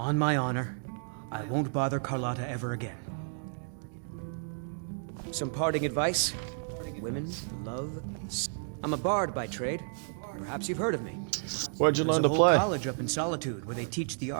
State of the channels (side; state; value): left; silent; digital silence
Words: my honor, I won't bother Carlotta ever again. Some parting advice? Women, love... I'm a bard by trade. Perhaps you've heard of me. Where'd you learn to There's a play? whole college up in Solitude where they teach the